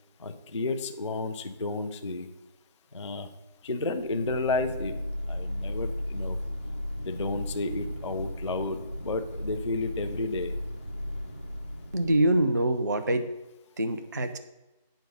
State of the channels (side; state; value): both; inverted; correlation -0.66